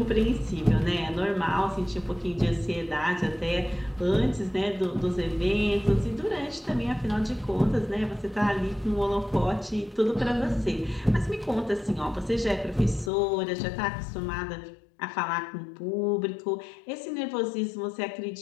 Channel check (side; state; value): right; drops out; at 13.1 s